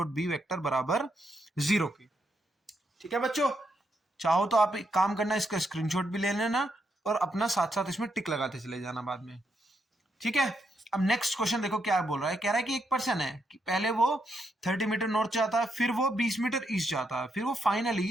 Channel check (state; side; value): normal; both; correlation 0.79